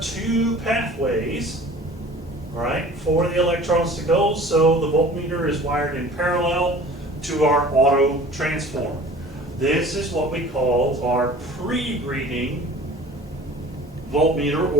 two pathways, all right, for the electrons to go. So the voltmeter is wired in parallel to our auto transformer. This is what we call our pre-reading voltmeter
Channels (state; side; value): normal; both; correlation 0.45